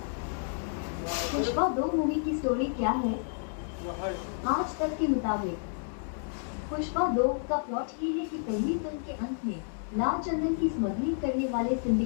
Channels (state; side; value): silent; right; digital silence